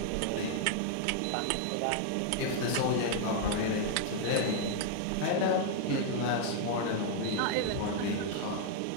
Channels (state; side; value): different; both; correlation 0.00